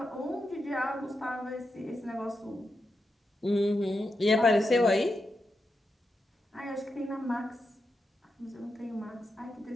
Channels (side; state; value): both; normal; correlation 0.87